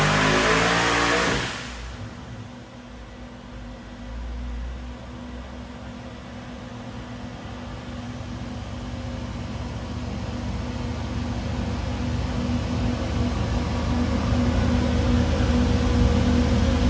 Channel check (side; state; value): both; identical; correlation 1.00